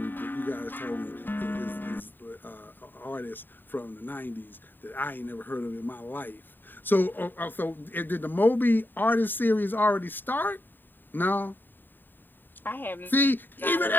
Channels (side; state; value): right; late; 0.092 ms